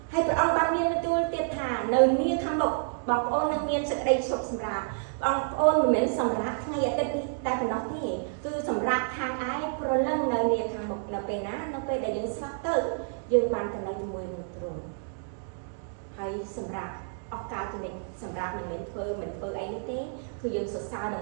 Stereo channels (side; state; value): left; silent; digital silence